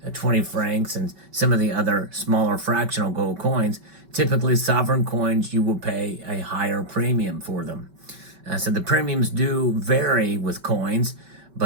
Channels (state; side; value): late; left; 5.2 ms